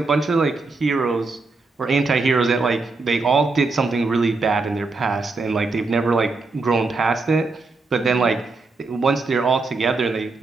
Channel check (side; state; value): left; quieter; 3.8 dB